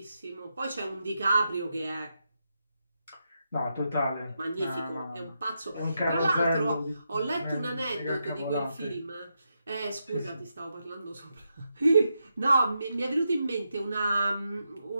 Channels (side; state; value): both; inverted; correlation -0.84